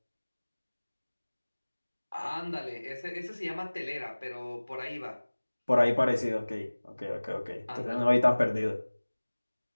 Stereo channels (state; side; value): inverted; both; correlation -1.00